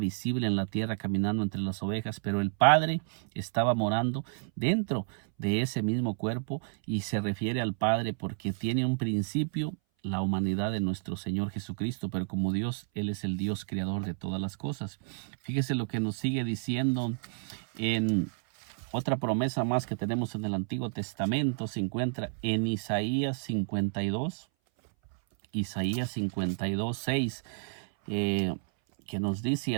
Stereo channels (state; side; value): silent; left; 57 dB below the other